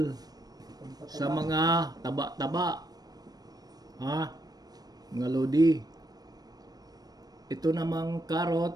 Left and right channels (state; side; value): late; left; 0.19 ms